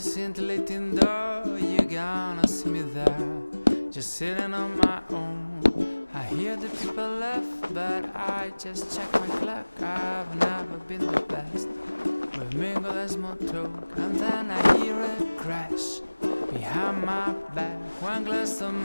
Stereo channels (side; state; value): both; inverted; correlation -1.00